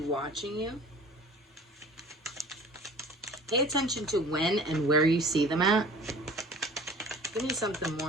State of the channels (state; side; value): normal; both; correlation 0.45